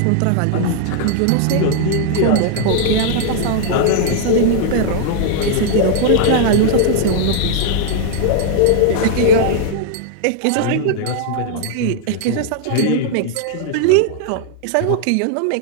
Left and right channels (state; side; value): different; both; correlation 0.00